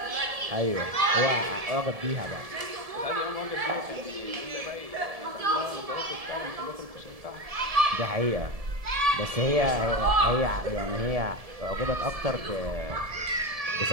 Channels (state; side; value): late; left; 1.7 ms